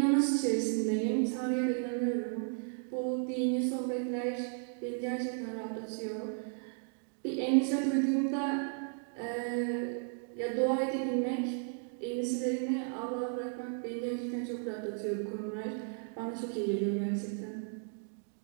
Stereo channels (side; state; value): left; silent; 55 dB below the other